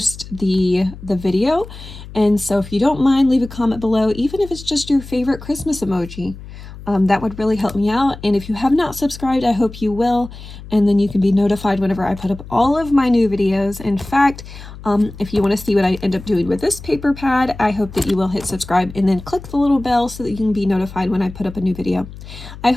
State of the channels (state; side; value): noise; left; hum, 15 dB below the sound